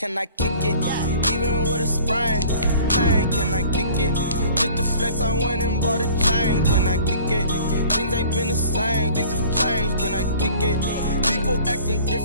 I kick it? Even with a sprain. Bang, can I kick it? Just the flex, I went and bought a chain. Can I kick it? Things ain't been the same. Things have changed. Can I kick it? People acting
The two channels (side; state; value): both; inverted; correlation -0.48